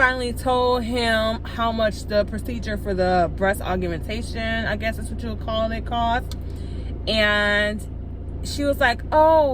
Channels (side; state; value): both; identical; correlation 1.00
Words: told him how much the procedure for the breast augmentation, I guess that's what you would call it, cost. And she was like,